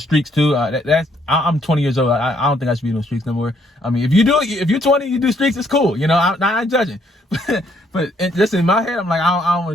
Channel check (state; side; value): normal; both; correlation 0.69